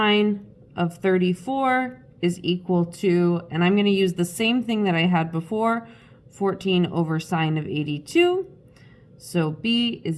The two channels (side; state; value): both; identical; correlation 1.00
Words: of 34 is equal to, and I'm going to use the same thing that I had before, 14 over sine of 82. So B